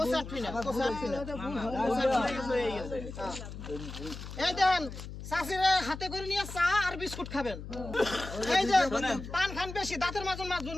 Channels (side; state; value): left; noise; hum, 10 dB below the sound